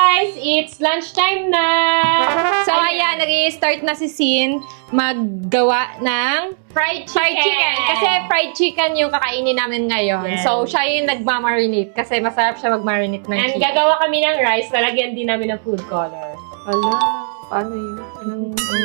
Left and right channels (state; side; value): silent; left; digital silence